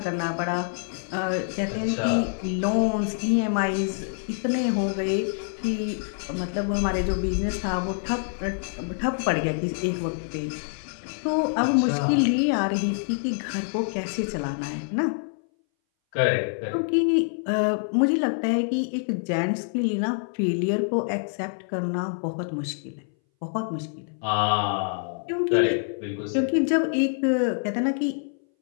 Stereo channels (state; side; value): silent; right; 60 dB below the other